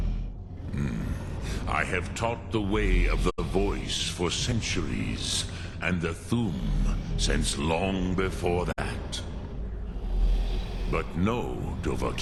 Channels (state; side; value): identical; both; correlation 1.00